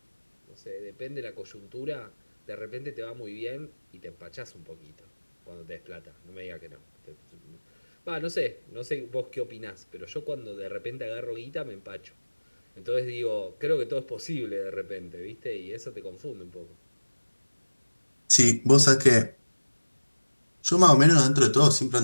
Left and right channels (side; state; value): both; inverted; correlation -1.00